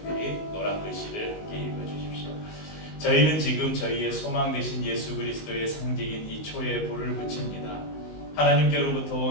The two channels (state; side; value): late; right; 19 ms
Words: 노란 글씨를 함께 읽어주십시오. 저희는 지금 저희의 소망 되신 예수 그리스도의 상징인 이 초에 불을 붙입니다. 하나님께로부터